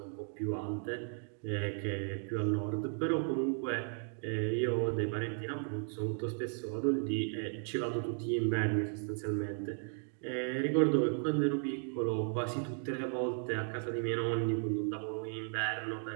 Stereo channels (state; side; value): silent; left; 54 dB below the other